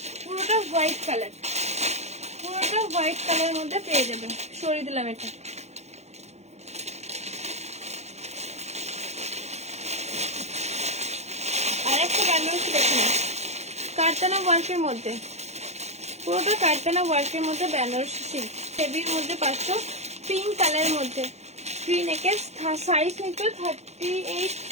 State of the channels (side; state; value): left; late; 0.32 ms